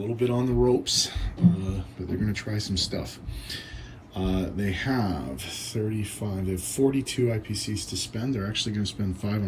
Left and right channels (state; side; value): identical; both; correlation 1.00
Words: bit on the ropes, but they're going to try some stuff. They have 42 IPCs to spend. They're actually going to spend 5